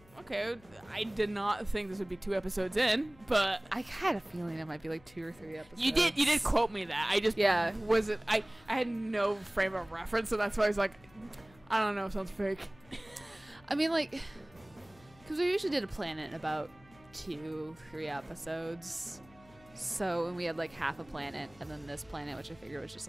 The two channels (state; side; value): noise; left; hum, 25 dB below the sound